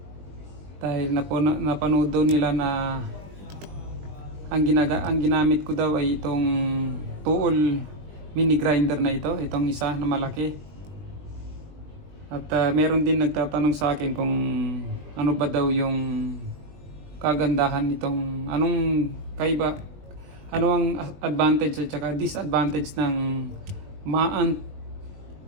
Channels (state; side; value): late; left; 20 ms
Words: dahil napanood daw nila na ang ginamit ko daw ay itong Tuol mini grinder na itong isa na malaki. At meron din nagtatanong sa akin kung ano ba daw yung kagandahan nitong ano ang advantage at saka disadvantage ng Maant